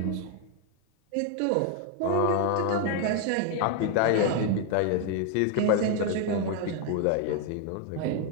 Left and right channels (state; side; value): different; both; correlation 0.01